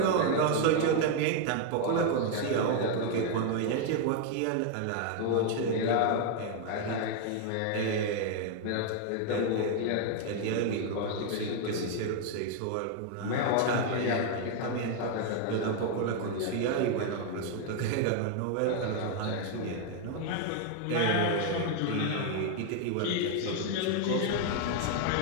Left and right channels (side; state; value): both; different; correlation 0.00